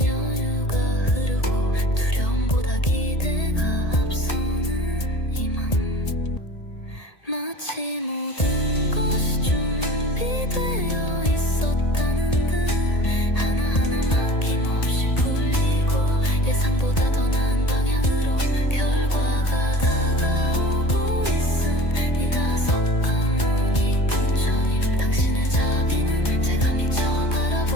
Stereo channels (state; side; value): late; right; 1.8 ms